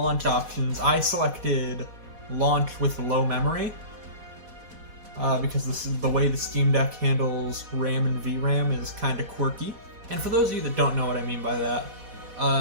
options, I selected launch with low memory, because this is the way the Steam Deck handles RAM and VRAM is kind of quirky. And for those of you that don't know what I mean by that,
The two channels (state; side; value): late; left; 4.1 ms